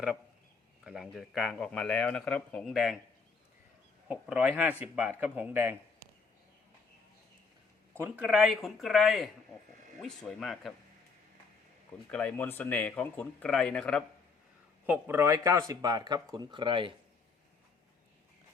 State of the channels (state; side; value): quieter; right; 4.7 dB